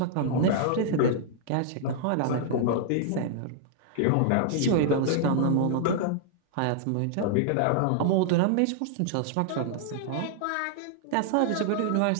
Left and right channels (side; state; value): both; different; correlation -0.01